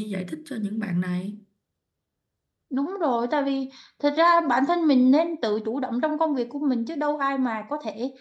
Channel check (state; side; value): identical; both; correlation 1.00